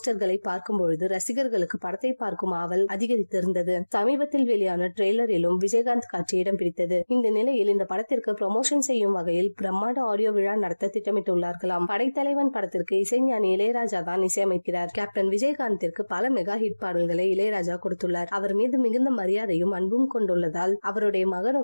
பார்க்கும் பொழுது ரசிகர்களுக்கு படத்தை பார்க்கும் ஆவல் அதிகரித்திருந்தது. சமீபத்தில் வெளியான ட்ரெய்லரிலும் விஜயகாந்த் காட்சி இடம் பிடித்தது. இந்த நிலையில் இந்த படத்திற்கு ப்ரமோஷன் செய்யும் வகையில் பிரம்மாண்ட ஆடியோ விழா நடத்த திட்டமிட்டுள்ளார்களாம். படைத்தலைவன் படத்திற்கு இசைஞானி இளையராஜா தான் இசையமைக்கிறார். கேப்டன் விஜயகாந்திற்கு பல மெகா ஹிட் பாடல்களை இளையராஜா கொடுத்துள்ளார். அவர் மீது மிகுந்த மரியாதையும் அன்பும் கொண்டுள்ளதால் அவருடைய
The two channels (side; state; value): both; inverted; correlation -1.00